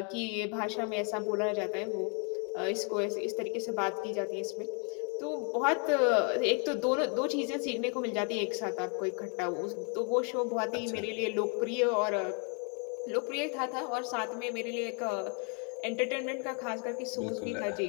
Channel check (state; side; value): quieter; right; 38.1 dB